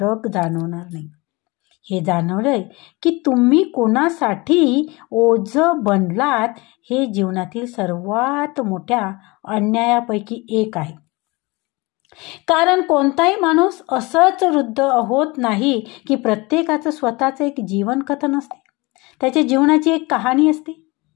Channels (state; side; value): quieter; right; 24.4 dB